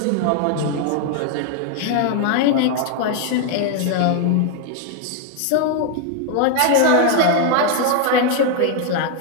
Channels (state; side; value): different; both; correlation 0.01